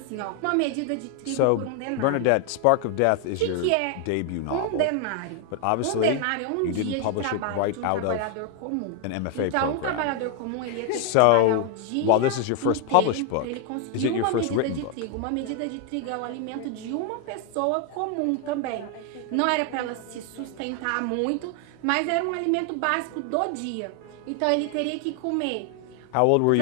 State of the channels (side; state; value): both; different; correlation 0.00